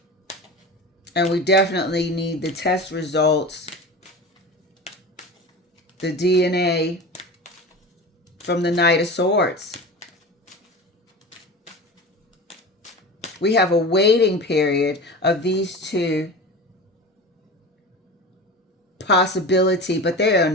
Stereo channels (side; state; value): both; normal; correlation 0.31